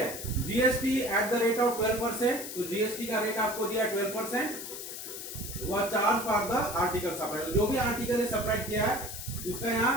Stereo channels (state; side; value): noise; left; hiss, 8 dB below the sound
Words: GST at the rate of 12%, तो जीएसटी का रेट आपको दिया 12%। वह charge for the article supply, जो भी आर्टिकल है सप्लाई किया है उसका